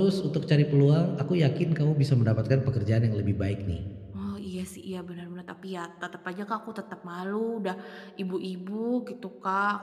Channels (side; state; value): both; identical; correlation 1.00